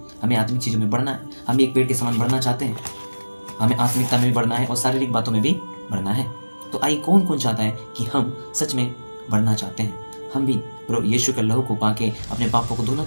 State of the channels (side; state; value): both; inverted; correlation -1.00